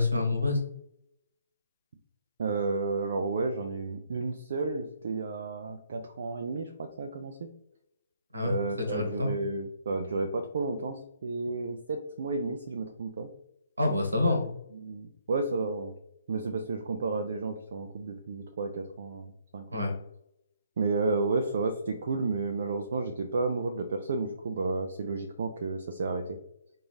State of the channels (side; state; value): both; inverted; correlation -0.70